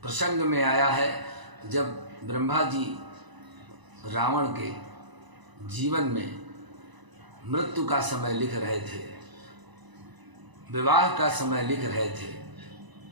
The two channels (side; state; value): left; late; 1.0 ms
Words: प्रसंग में आया है जब ब्रह्मा जी रावण के जीवन में मृत्यु का समय लिख रहे थे, विवाह का समय लिख रहे थे,